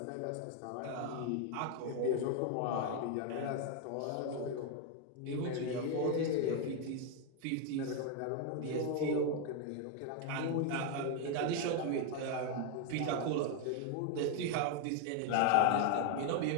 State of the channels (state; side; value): different; both; correlation 0.01